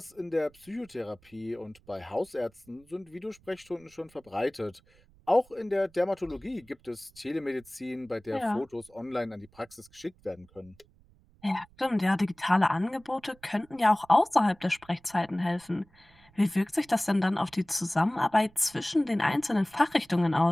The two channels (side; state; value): right; noise; rumble, 29 dB below the sound